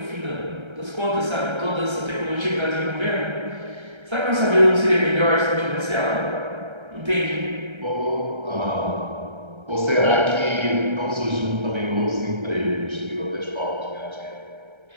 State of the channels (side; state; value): left; late; 1.3 ms